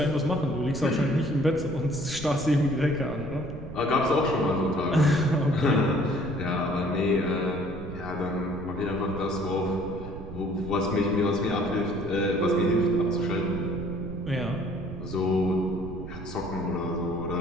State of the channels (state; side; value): noise; right; rumble, 11 dB below the sound